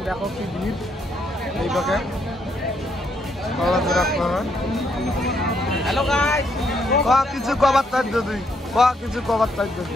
দেখো কি ভিড় এই পাকে। হ্যালো গাইস, কিছু কবার চাই যদি কিছু কবার চাই যদি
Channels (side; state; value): both; normal; correlation 0.74